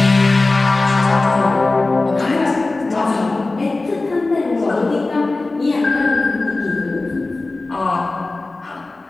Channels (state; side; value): quieter; right; 3.2 dB